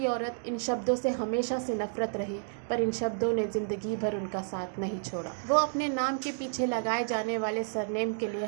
औरत, इन शब्दों से हमेशा से नफरत रही, पर इन शब्दों ने ज़िंदगी भर उनका साथ नहीं छोड़ा। वो अपने नाम के पीछे लगाए जाने वाले सरनेम के लिए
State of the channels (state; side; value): silent; left; digital silence